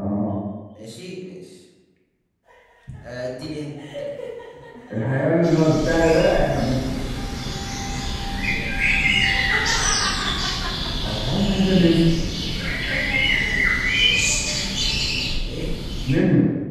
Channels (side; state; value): both; identical; correlation 1.00